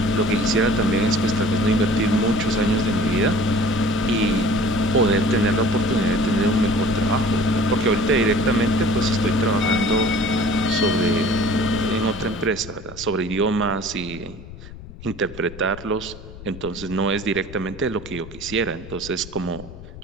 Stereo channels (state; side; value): noise; left; rumble, 15 dB below the sound